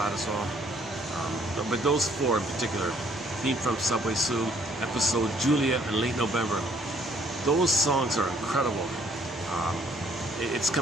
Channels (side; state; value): both; normal; correlation 0.63